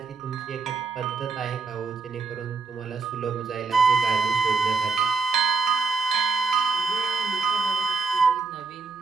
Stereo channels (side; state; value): left; quieter; 4.4 dB